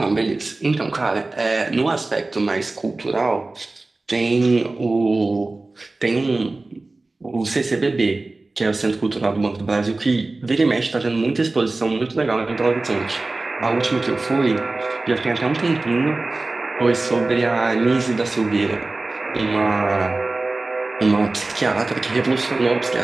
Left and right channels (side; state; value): left; quieter; 3.2 dB